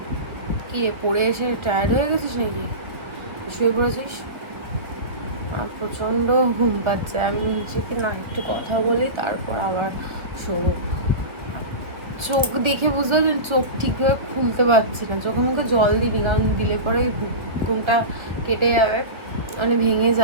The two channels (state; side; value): late; left; 1.6 ms